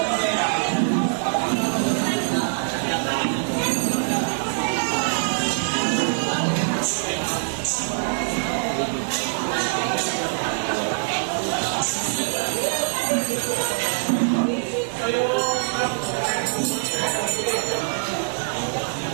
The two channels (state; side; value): silent; left; digital silence